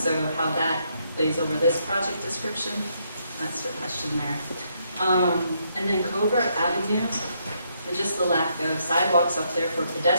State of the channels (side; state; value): both; inverted; correlation -0.75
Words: how that lays over this project description, that's the question there. And then Covert Avenue, and just the lack of sidewalks up there for